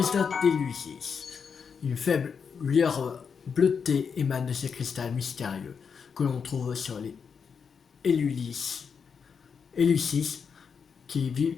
d'Élucis. Une faible lueur bleutée émane de ces cristals mystérieux que l'on trouve sur les Élucis qui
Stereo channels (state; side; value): quieter; right; 6.3 dB